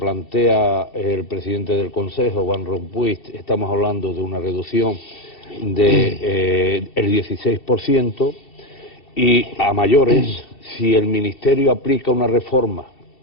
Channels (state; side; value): late; right; 2.7 ms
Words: el presidente del Consejo, Van Rompuy, estamos hablando de una reducción del 16%, y a mayores, si el Ministerio aplica una reforma